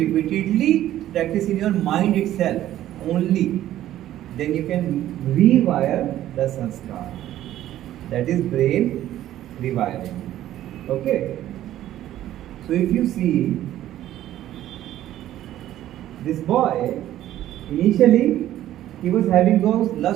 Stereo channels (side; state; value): left; quieter; 13.0 dB